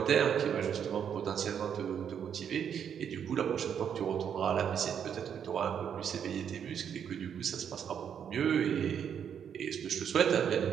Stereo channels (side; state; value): left; quieter; 8.2 dB